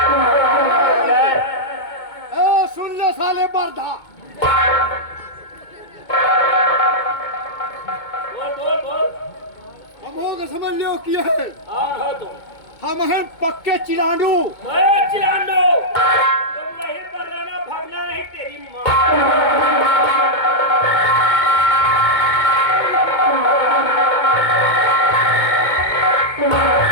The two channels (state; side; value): late; right; 2.2 ms